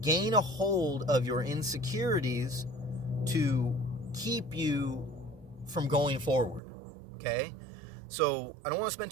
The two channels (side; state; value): left; drops out; at 6.6 s